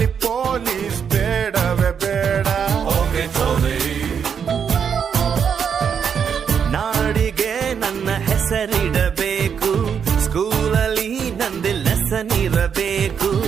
ಪೊಲೀಸ್ ಬೇಡವೇ ಬೇಡ. ನಾಡಿಗೆ ನನ್ನ ಹೆಸರಿಡಬೇಕು, ಸ್ಕೂಲಲ್ಲಿ ನಂದು ಲೆಸನ್ ಇರಬೇಕು.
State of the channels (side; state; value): left; quieter; 7.2 dB